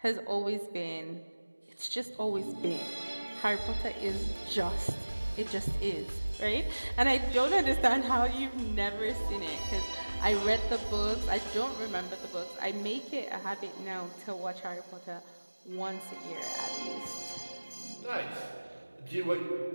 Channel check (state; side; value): inverted; both; correlation -1.00